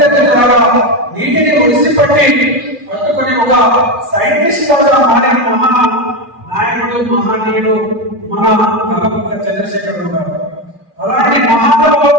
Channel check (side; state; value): left; late; 2.4 ms